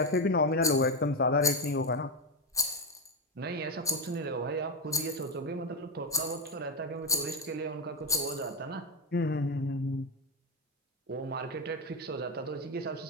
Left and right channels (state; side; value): normal; both; correlation 0.10